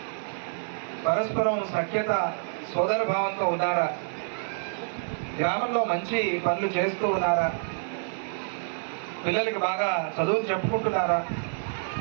పరస్పరం సఖ్యత, సోదర భావంతో ఉన్నారా? గ్రామంలో మంచి పనులు చేస్తూ ఉన్నారా? పిల్లలకి బాగా చదువులు చెప్పుకుంటున్నారా?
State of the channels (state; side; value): silent; left; 60 dB below the other